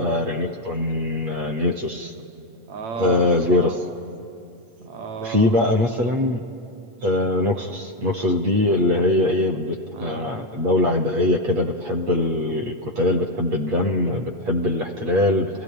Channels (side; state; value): left; late; 8.4 ms